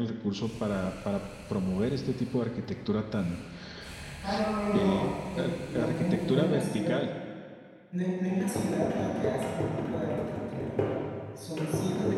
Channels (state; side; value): identical; both; correlation 1.00